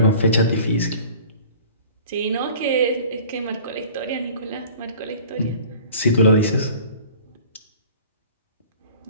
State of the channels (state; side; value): inverted; both; correlation -0.45